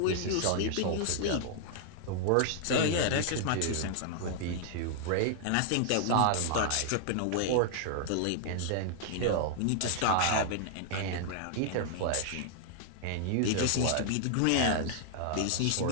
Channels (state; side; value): different; both; correlation -0.01